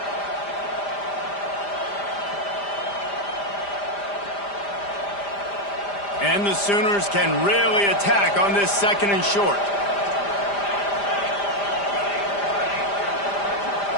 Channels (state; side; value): late; right; 5.0 ms